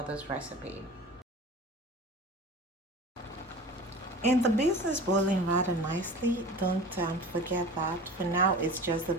recipe. And the beans is boiling rather nicely. Don't forget that. For now, it's just the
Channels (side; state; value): both; normal; correlation 0.38